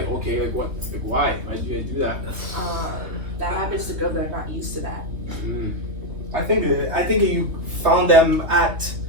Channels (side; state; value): left; late; 3.2 ms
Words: okay, like what? Like, why? Why did you guys do that? That happens to girls that are not used to that. I think you found them at